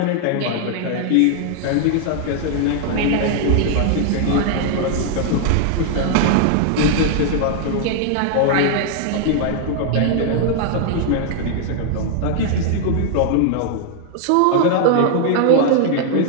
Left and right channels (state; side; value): different; both; correlation 0.00